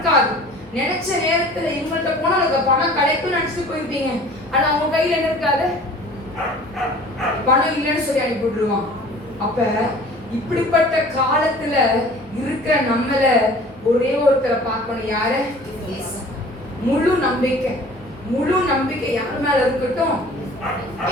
நினைச்ச நேரத்துல இவங்கள்ட்ட போனா அதுக்கு பணம் கிடைக்கும்னு நினைச்சிட்டு போயிருப்பீங்க, ஆனா அவங்க கையில என்ன இருக்காது, பணம் இல்லைன்னு சொல்லி அனுப்பி விட்டுருவான். அப்ப இப்படிப்பட்ட காலத்துல இருக்கிற நம்மள ஒரே ஒருத்தரை பார்க்கணும். யாரு? முழு நம்பிக்கை, முழு நம்பிக்கை யார் மேல இருக்கட்டும்?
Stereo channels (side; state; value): both; normal; correlation 0.47